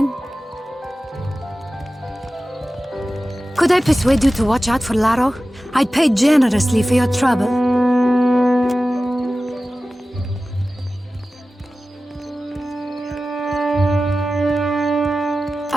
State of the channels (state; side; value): normal; both; correlation 0.95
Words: Could I persuade you to watch out for Laro? I'd pay generously for your trouble.